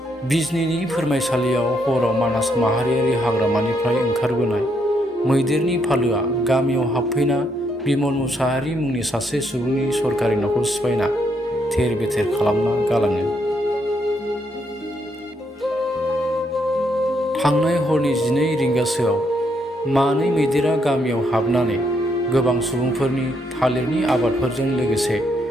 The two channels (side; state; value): both; normal; correlation 0.75